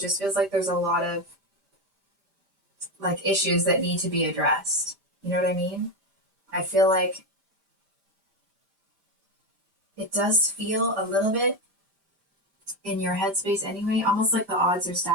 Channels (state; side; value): late; left; 5.1 ms